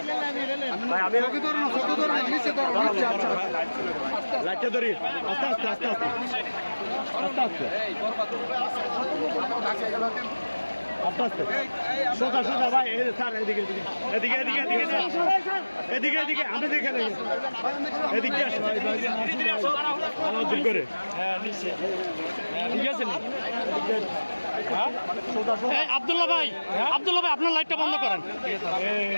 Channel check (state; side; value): inverted; both; correlation -1.00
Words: ভাই আমি ওকে ধরুন ফটো ধরুন নিচে ধরুন নিচে আচ্ছা লাইটটা ধরি আস্তে আস্তে আস্তে আস্তে আস্তে আস্তে আস্তে আস্তে সোজা সোজা ভাই স্যার এদিকে এদিকে এদিকে এদিকে এদিকে এদিকে আমি দেখে নেই এদিকে আসুন আলাউদ্দিন করে ঠিক আছে আব্দুল্লাহ ভাই আপনার লাইটটা বন্ধ করেন